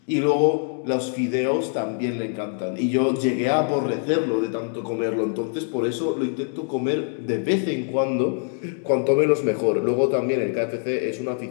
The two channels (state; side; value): silent; right; 63 dB below the other